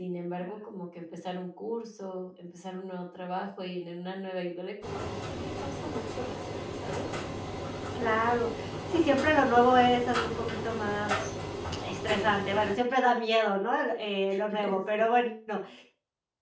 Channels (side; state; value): both; identical; correlation 1.00